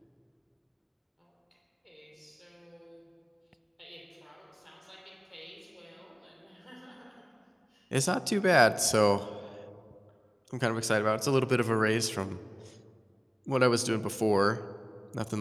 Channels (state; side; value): identical; both; correlation 1.00